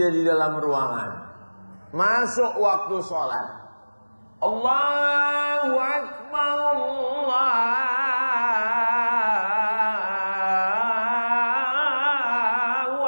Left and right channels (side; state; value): both; inverted; correlation -1.00